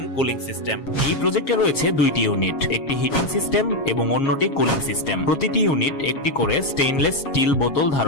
কুলিং সিস্টেম। এই প্রজেক্টে রয়েছে দুইটি ইউনিট, একটি হিটিং সিস্টেম এবং অন্যটি কুলিং সিস্টেম। প্রতিটি ইউনিট একটি করে স্টেইনলেস স্টিল বোতল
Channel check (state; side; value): late; right; 7.3 ms